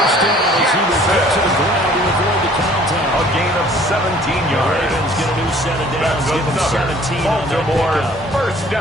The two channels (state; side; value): normal; both; correlation 0.54